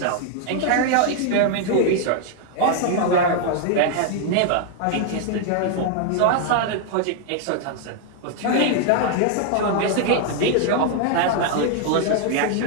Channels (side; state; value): both; different; correlation 0.00